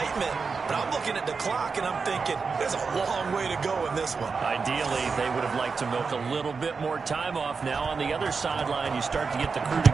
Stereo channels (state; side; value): quieter; left; 5.0 dB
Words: But I'm looking at the clock, and I'm thinking, there's a long way to go in this one. Ideally, they would have liked to milk a little bit more time off. Now on the other sideline, you start to get the crew